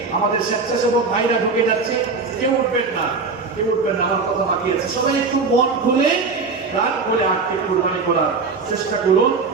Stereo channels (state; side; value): quieter; left; 4.5 dB